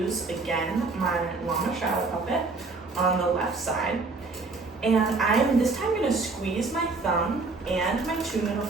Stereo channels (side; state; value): left; quieter; 3.8 dB